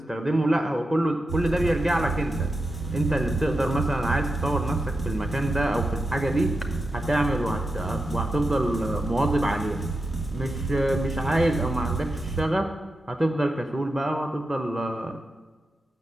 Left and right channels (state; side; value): normal; both; correlation 0.89